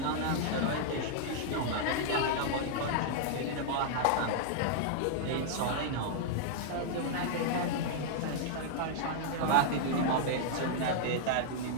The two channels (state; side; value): different; both; correlation -0.01